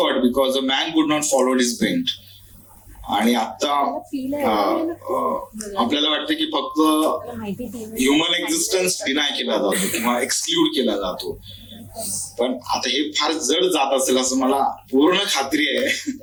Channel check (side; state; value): both; identical; correlation 1.00